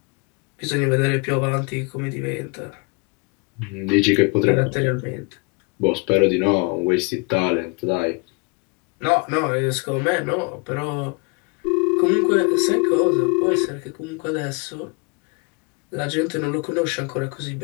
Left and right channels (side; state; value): right; quieter; 30.5 dB